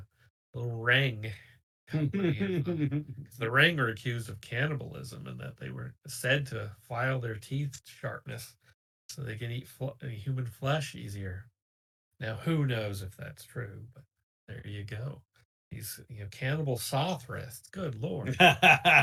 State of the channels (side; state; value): both; identical; correlation 1.00